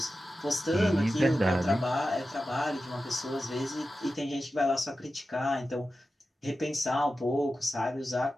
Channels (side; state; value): both; normal; correlation 0.93